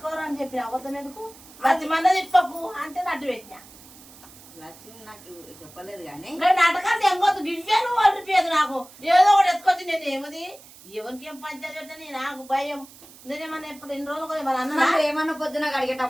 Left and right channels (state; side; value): noise; right; hiss, 21 dB below the sound